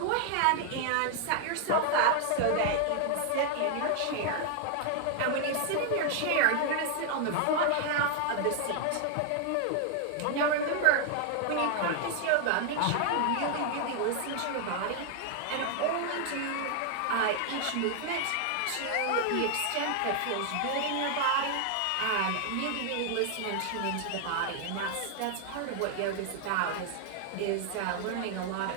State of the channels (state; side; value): different; both; correlation 0.00